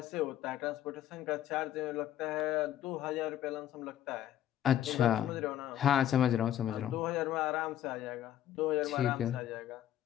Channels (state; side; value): quieter; right; 11.6 dB